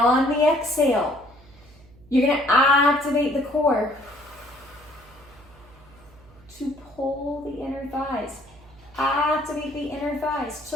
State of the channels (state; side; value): noise; right; hum, 25 dB below the sound